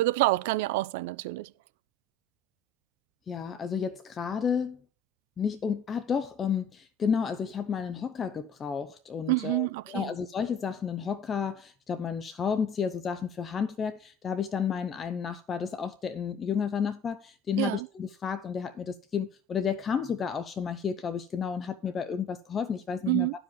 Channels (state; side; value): normal; both; correlation 0.43